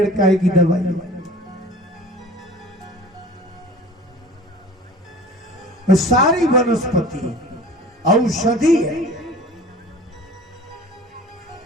काय की दवाई है। सारी वनस्पति औषधि है।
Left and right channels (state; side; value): normal; both; correlation 0.42